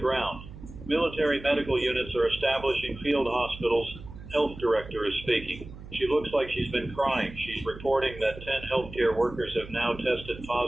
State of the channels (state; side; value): noise; right; hum, 15 dB below the sound